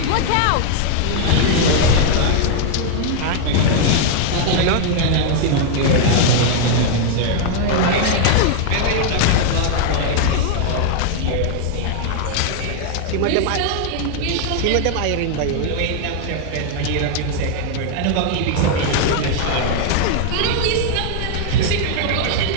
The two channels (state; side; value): different; both; correlation 0.00